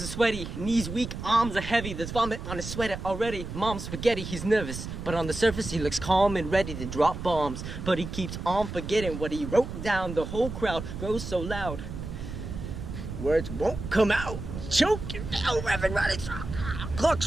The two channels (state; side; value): noise; right; rumble, 8 dB below the sound